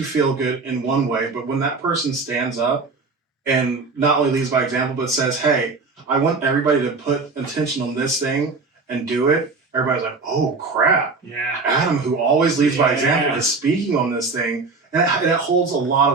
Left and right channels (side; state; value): left; quieter; 4.1 dB